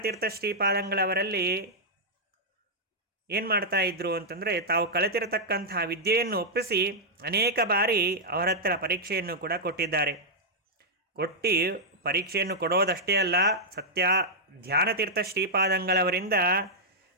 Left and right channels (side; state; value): both; normal; correlation -0.06